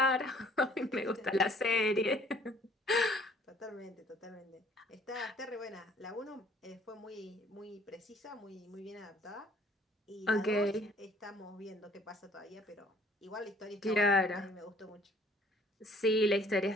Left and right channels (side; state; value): both; normal; correlation 0.57